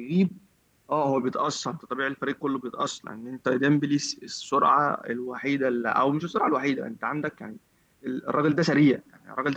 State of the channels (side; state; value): both; identical; correlation 1.00